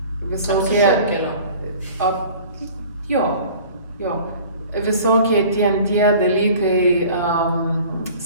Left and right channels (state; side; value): inverted; both; correlation -0.45